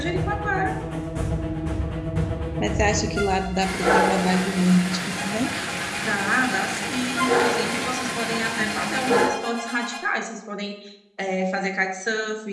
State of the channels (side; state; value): both; identical; correlation 1.00